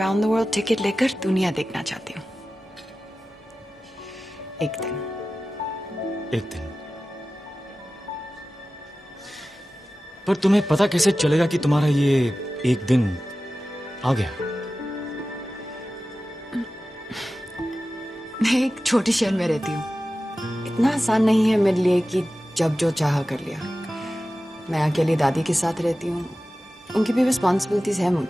द वर्ल्ड टिकट लेकर दुनिया देखना चाहती हूँ। एक दिन। पर तुम्हें पता कैसे चलेगा कि तुम्हारा ये एक दिन आ गया? मैं एक छोटे शहर में रहती हूँ। इतना आसान नहीं है मेरे लिए कि जब जो चाहा कर लिया। मैं अकेली दादी के साथ रहती हूँ, उनकी भी रिस्पॉन्सिबिलिटीज है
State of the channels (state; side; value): normal; both; correlation 0.95